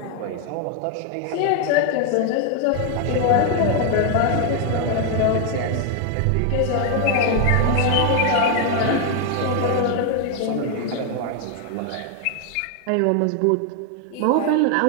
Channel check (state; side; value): different; both; correlation 0.00